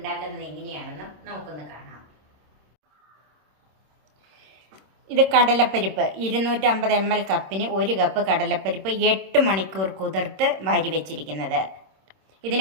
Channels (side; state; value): left; late; 26 ms